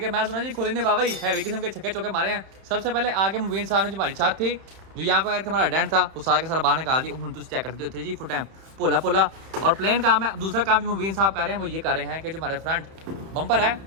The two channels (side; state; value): left; late; 31 ms